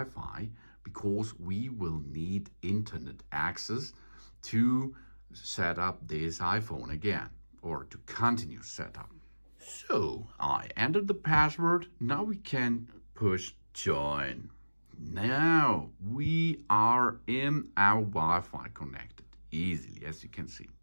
because we will need internet access to set up this iPhone again or to continue setup. So I entered the password. Now we can push join. Now we are in our Wi-Fi connected easily, as you can see.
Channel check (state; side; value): inverted; both; correlation -1.00